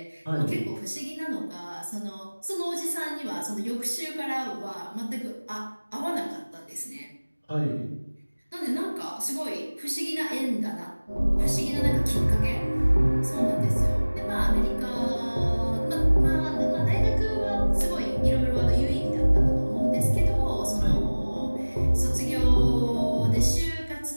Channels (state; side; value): inverted; both; correlation -1.00